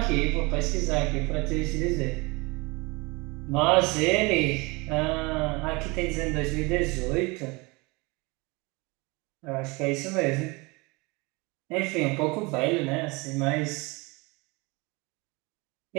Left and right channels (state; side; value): quieter; left; 26.1 dB